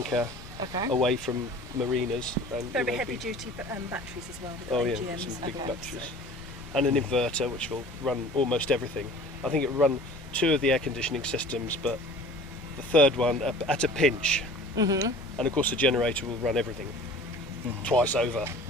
Okay. away from marinas. And, Very heavy duty batteries as well. With Oh yeah, AGMs some and big all, batteries. so. And an inverter which will run almost everything. I think it will run 2 of the air conditioning systems, but the third one at a pinch. And of course the generator will run everything twice over.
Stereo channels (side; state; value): both; normal; correlation 0.44